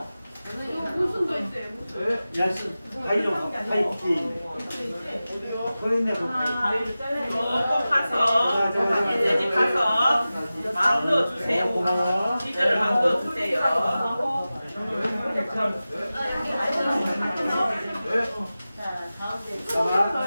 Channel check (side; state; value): both; inverted; correlation -0.95